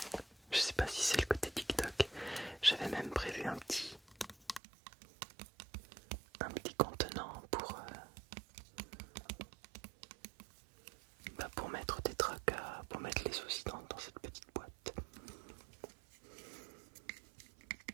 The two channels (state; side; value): drops out; left; at 4.6 s